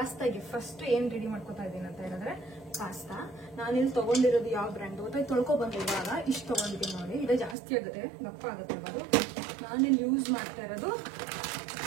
ಫಸ್ಟ್ ಏನ್ ರೆಡಿ ಮಾಡ್ಕೊತಾ ಇದ್ದೀನಿ ಅಂತ ಹೇಳಿದ್ರೆ, ಪಾಸ್ತಾ ನಾನಿಲ್ಲಿ ತಗೊಂಡಿರೋದು ಯಾವ ಬ್ರ್ಯಾಂಡ್ ಗೊತ್ತಾ, ತೊಳ್ಕೊ ಬಂದೆ. ಇವಾಗ ಇಷ್ಟು ತಗೊಂಡಿದ್ದೀನಿ ನೋಡಿ, ಇದು ಜಾಸ್ತಿ ಆಗುತ್ತೆ, ದಪ್ಪ ಆಗುತ್ತೆ. ಅದು ನಾನಿಲ್ಲಿ ಯೂಸ್ ಮಾಡ್ತಾ ಇರೋದು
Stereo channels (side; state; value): left; drops out; at 7.6 s